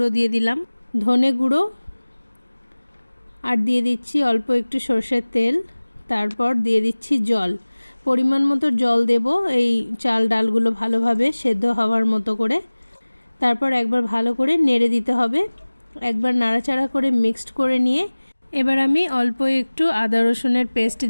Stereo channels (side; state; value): both; inverted; correlation -1.00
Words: দিয়ে দিলাম, ধনে গুঁড়ো, আর দিয়ে দিচ্ছি অল্প একটু সরষের তেল। তারপর দিয়ে দিচ্ছি জল, পরিমাণ মতো জল দেব এই চাল ডালগুলো ভালোভাবে সেদ্ধ হওয়ার মতো করে। তারপর একবার ভালো করে নেড়ে দিতে হবে। একবার নাড়াচাড়া করে মিক্সড করে নিয়ে এবার আমি অল্প একটু আদা রসুনের পেস্ট